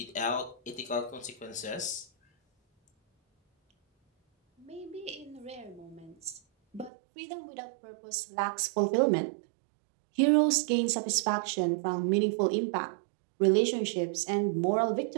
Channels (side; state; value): left; drops out; at 6.9 s